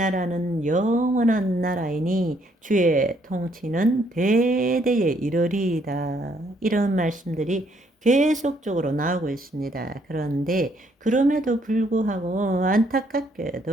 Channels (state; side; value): normal; both; correlation 0.69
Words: 영원한 나라이니 주의 통치는 대대에 이르리이다. 이런 말씀들이 계속적으로 나오고 있습니다. 그런데 그럼에도 불구하고